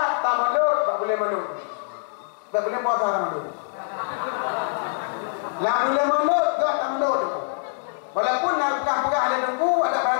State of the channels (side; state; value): right; silent; digital silence